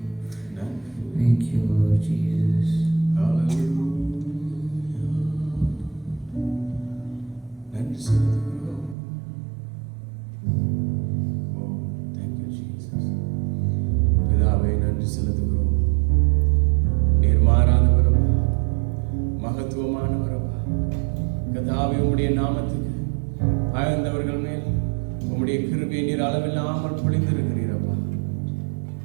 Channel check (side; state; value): left; drops out; at 9.0 s